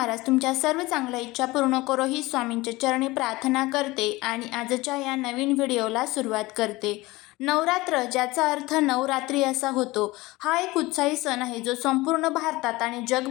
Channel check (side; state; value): right; quieter; 20.6 dB